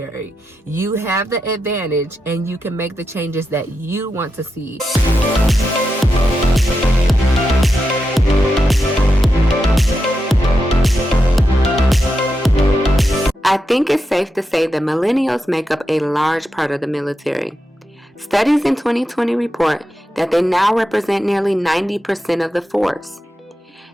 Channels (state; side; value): normal; both; correlation 0.87